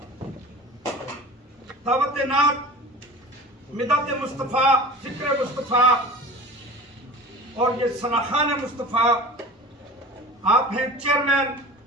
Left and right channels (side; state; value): both; normal; correlation 0.37